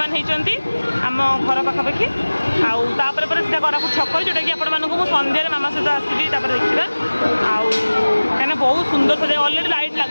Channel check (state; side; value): inverted; both; correlation -1.00